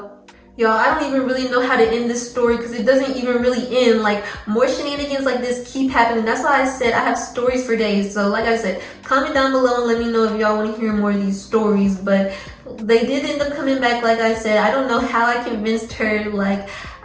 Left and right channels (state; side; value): identical; both; correlation 1.00